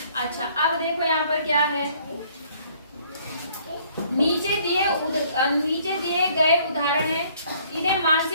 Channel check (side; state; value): both; inverted; correlation -0.61